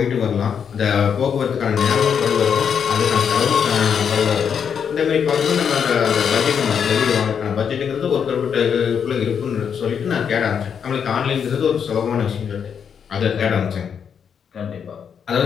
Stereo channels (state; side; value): quieter; right; 7.3 dB